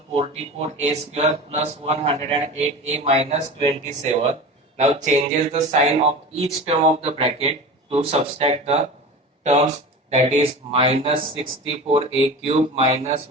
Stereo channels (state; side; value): normal; both; correlation 0.32